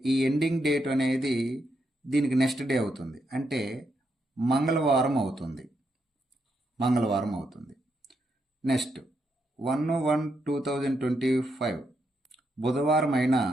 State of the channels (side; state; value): both; normal; correlation 0.80